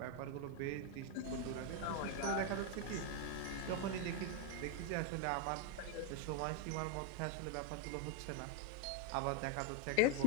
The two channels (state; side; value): different; both; correlation 0.01